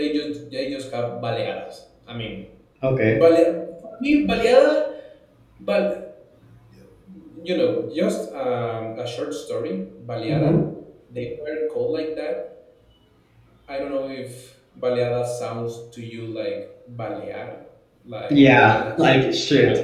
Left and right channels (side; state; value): both; identical; correlation 1.00